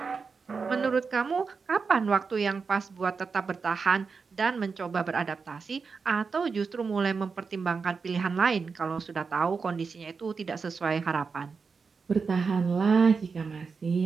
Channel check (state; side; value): quieter; left; 5.1 dB